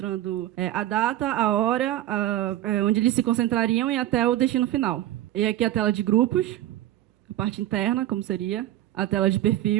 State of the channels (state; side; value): quieter; left; 13.8 dB